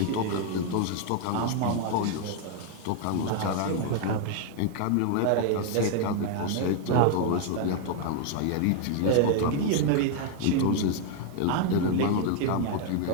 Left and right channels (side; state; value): both; different; correlation 0.00